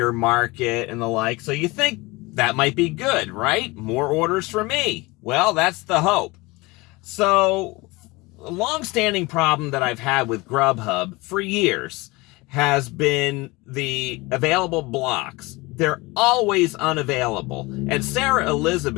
market and the like. So you think that might be good, right? More orders for me. Well, that's the hope. So a long-standing problem that I've had with Grubhub for years has been the available blocks. They're always unavailable. And Sarah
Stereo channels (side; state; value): right; quieter; 23.3 dB